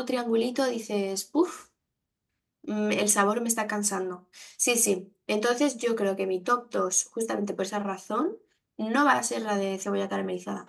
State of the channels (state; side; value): identical; both; correlation 1.00